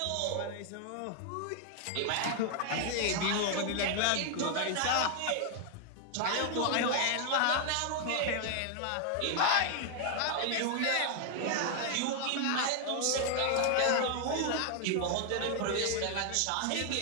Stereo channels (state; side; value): different; both; correlation 0.00